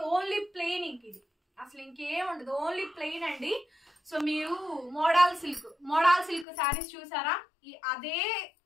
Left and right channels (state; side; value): drops out; right; at 6.5 s